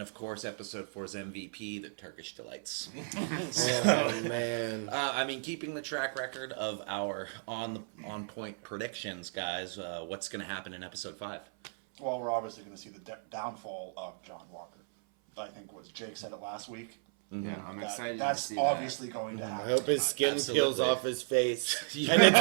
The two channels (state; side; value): silent; left; 55 dB below the other